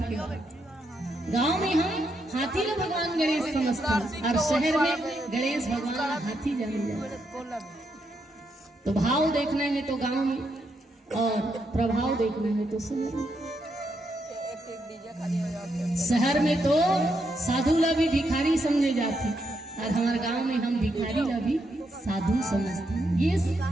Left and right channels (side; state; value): both; normal; correlation 0.80